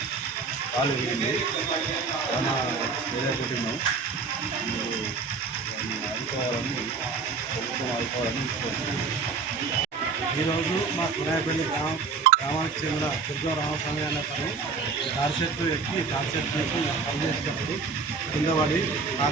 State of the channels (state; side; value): quieter; left; 4.8 dB